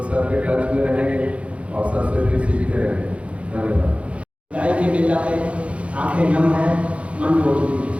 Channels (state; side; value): late; left; 0.062 ms